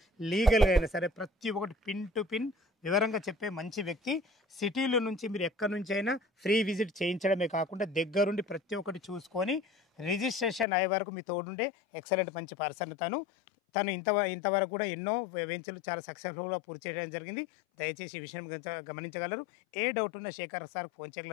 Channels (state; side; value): drops out; right; at 10.7 s